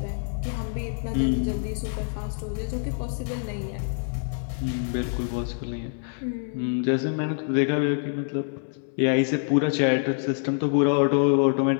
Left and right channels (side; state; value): right; silent; 61 dB below the other